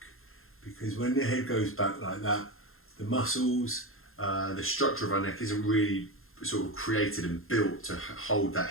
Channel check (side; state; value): right; late; 0.61 ms